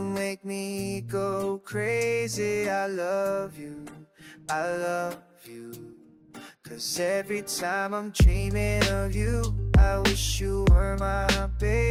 make me go crazy. I love you, I love you. Cause every time I'm dreaming of you, I wish you were my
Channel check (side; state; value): both; identical; correlation 1.00